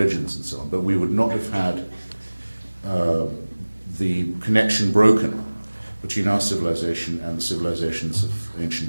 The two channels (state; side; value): inverted; both; correlation -1.00